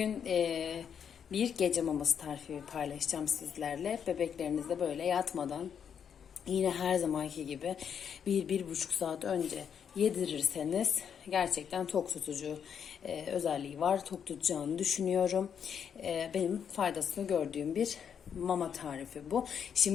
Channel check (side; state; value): right; quieter; 7.7 dB